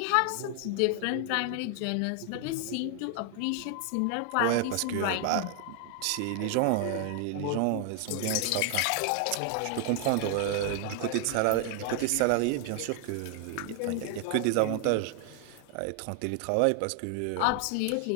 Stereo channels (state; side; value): different; both; correlation 0.00